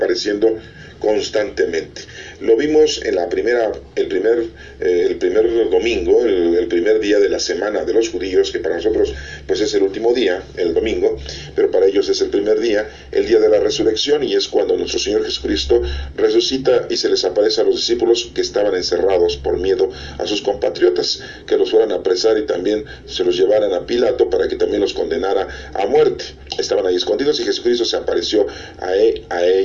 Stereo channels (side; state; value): both; identical; correlation 1.00